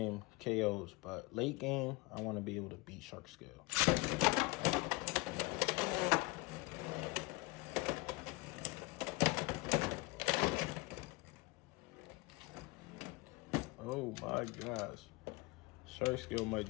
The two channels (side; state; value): right; quieter; 24.2 dB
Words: KOs, but late game, I want to be able to beat Shark Scale. Oh my gosh. Shark Scale might